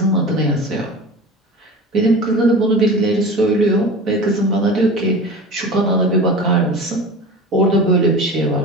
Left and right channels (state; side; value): normal; both; correlation 0.33